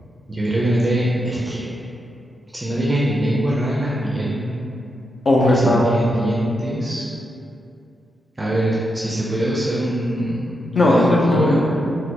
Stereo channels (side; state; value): both; normal; correlation 0.84